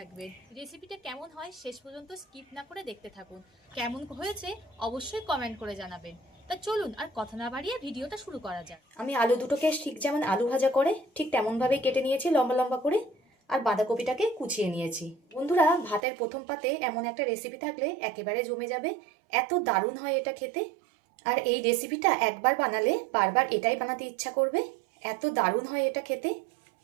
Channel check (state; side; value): drops out; left; at 16.0 s